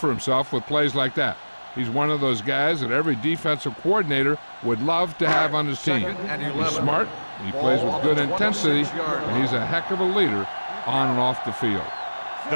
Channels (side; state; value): both; inverted; correlation -1.00